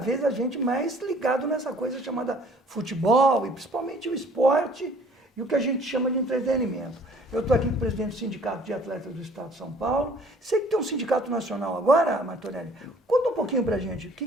a gente mais ligado nessa coisa chamada futebol e principalmente o esporte e o que a gente chama de entretenimento. Eu estou aqui com o presidente do Sindicato de Atletas do Estado de São Paulo. Sei que tem um sindicato nacional agora, Martorelli. Conta um pouquinho para a gente, o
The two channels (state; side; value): normal; both; correlation 0.55